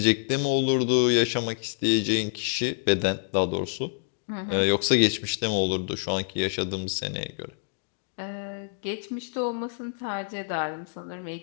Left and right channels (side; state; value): right; silent; digital silence